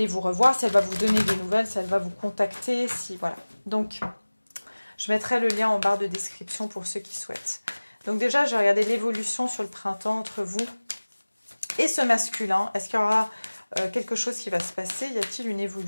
vous revoir, si elle va vous donner des nouvelles, si elle va vous contacter, si voilà. Donc, je mettrai le lien en barre de description pour ceux qui souhaitent. Donc déjà, je vais regarder l'évolution sur le printemps entre vous et ce masculin. Est-ce qu'il y aura quelque chose qui va se passer? Y a-t-il une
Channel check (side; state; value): both; inverted; correlation -1.00